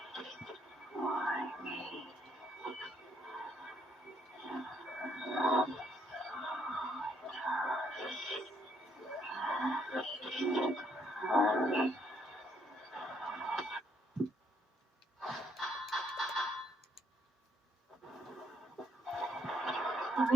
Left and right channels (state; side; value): normal; both; correlation 0.72